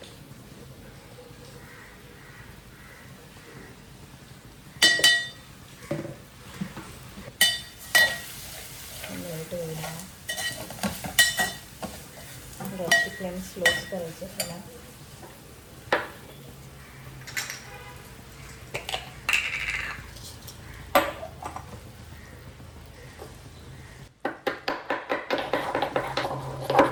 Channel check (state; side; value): identical; both; correlation 1.00